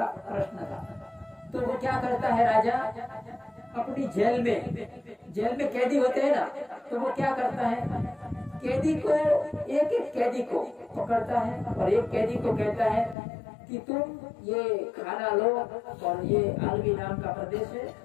प्रश्न था। तो वो क्या करता है राजा, अपनी जेल में कैदी होते हैं ना, तो वो क्या करता है, कैदी को एक कैदी को पकड़ता है और एक कैदी को कहता है कि तुम ये खाना लो और ये आलवी नाम का प्रदेश है,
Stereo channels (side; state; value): right; drops out; at 13.2 s